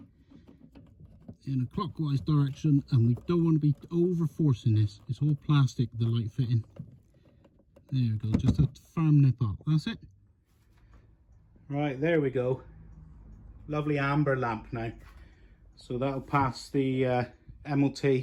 in a clockwise direction, and we don't want to be over forcing this. It's all plastic, the light fitting. There we go, just a firm nip up. That's it. Right, there we go. Lovely amber lamp now. So that'll pass the MOT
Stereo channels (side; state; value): both; identical; correlation 1.00